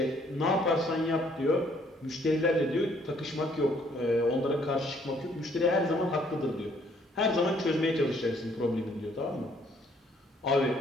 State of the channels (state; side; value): normal; both; correlation 0.64